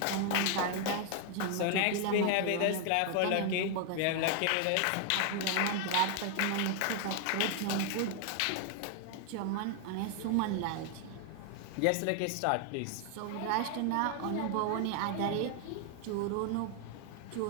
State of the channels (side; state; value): both; different; correlation 0.00